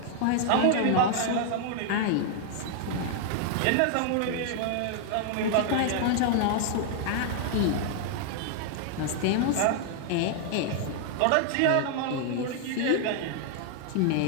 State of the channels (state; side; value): different; both; correlation 0.00